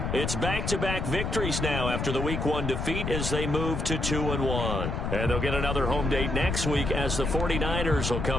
it's back-to-back victories now after the Week 1 defeat as they move to 2-1. And they'll get another home date next week as the 49ers will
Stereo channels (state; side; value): noise; left; rumble, 2 dB below the sound